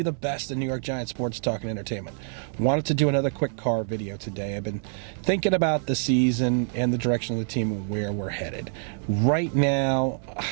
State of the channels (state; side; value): silent; left; digital silence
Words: the best in New York Giants sports talk and entertainment. Wanted to do another quick car video today. I've been thinking about the season and the direction of the team and where we're headed. Right now,